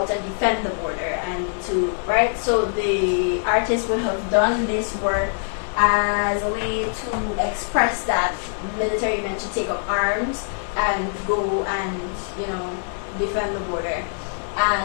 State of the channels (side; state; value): right; silent; digital silence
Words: and defend the border so the artist would have done this work as a way to express that military men should take up arms and go and defend the border,